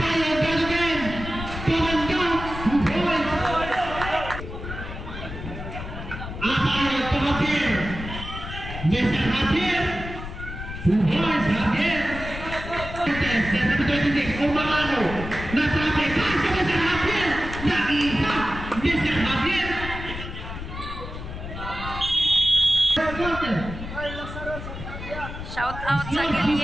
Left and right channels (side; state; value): left; noise; rumble, 9 dB below the sound